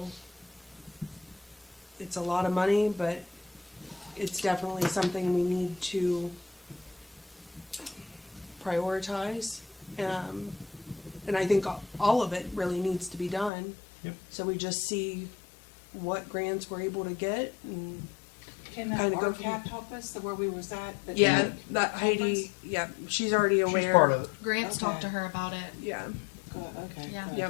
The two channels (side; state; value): right; drops out; at 13.5 s